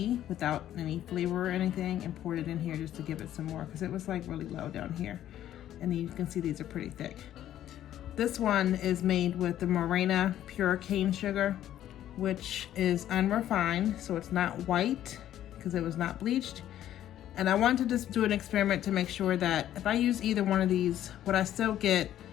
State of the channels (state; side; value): quieter; right; 11.9 dB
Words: without any flavor or anything and poured it in here just to give it some more because it was like really low down here. And then you can see these are pretty thick. This one is made with the Morena pure cane sugar, which is unrefined, so it's not white because it was not bleached. And I wanted to just do an experiment to make sure that if I use either one of these, would I still get